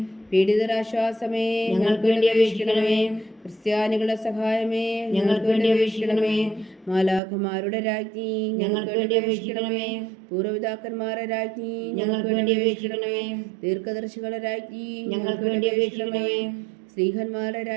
പീഡിതരാശ്വാസമേ, ഞങ്ങൾക്ക് വേണ്ടി അപേക്ഷിക്കണമേ. ക്രിസ്ത്യാനികളുടെ സഹായമേ, ഞങ്ങൾക്ക് വേണ്ടി അപേക്ഷിക്കണമേ. മാലാഖമാരുടെ രാജ്ഞി, ഞങ്ങൾക്ക് വേണ്ടി അപേക്ഷിക്കണമേ. പൂർവ്വപിതാക്കന്മാരുടെ രാജ്ഞി, ഞങ്ങൾക്ക് വേണ്ടി അപേക്ഷിക്കണമേ. ദീർഘദർശികളുടെ രാജ്ഞി, ഞങ്ങൾക്ക് വേണ്ടി അപേക്ഷിക്കണമേ. ശ്രീഹന്മാരുടെ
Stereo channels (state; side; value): drops out; left; at 7.2 s